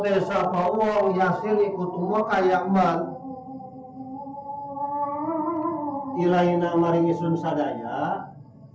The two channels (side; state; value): both; identical; correlation 1.00